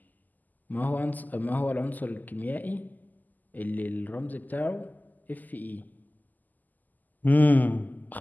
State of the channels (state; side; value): late; right; 0.083 ms